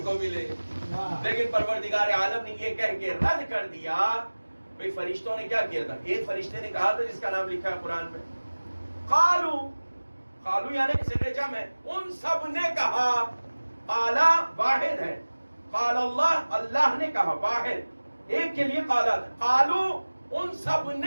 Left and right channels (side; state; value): both; inverted; correlation -1.00